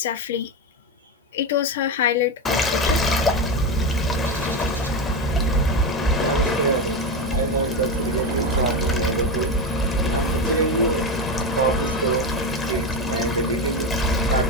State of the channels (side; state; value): both; normal; correlation 0.15